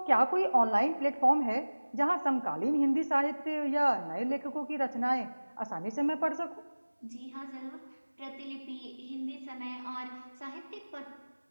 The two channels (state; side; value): inverted; both; correlation -1.00